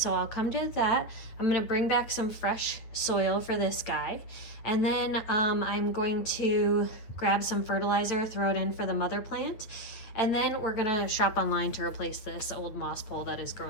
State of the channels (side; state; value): right; late; 9.2 ms